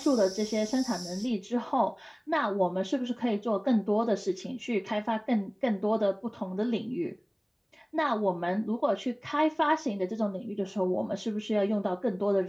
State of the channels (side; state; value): both; identical; correlation 1.00